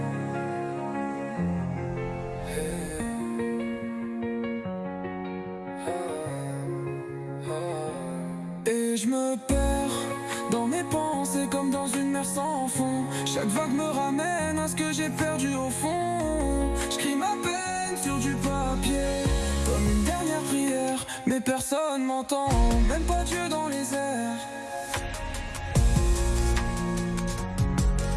Et je me perds dans mes pensées comme dans une mer sans fond. Chaque vague me ramène à ce que j'ai perdu au fond. J'cris ma peine sur du papier comme une dernière prière, mais personne m'entend, même pas Dieu dans les airs.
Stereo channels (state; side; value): identical; both; correlation 1.00